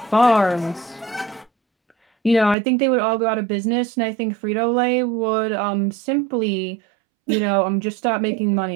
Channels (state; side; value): drops out; left; at 2.6 s